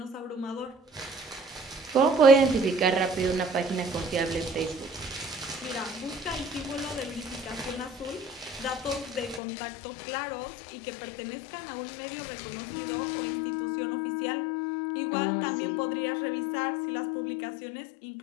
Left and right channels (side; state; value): right; drops out; at 9.4 s